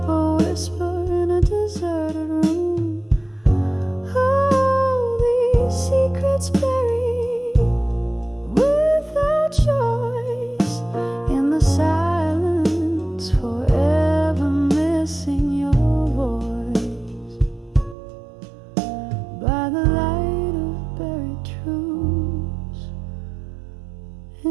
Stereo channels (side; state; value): left; drops out; at 17.9 s